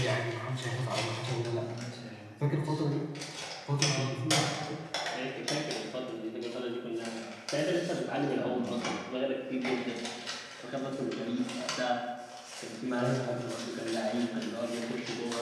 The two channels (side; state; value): both; identical; correlation 1.00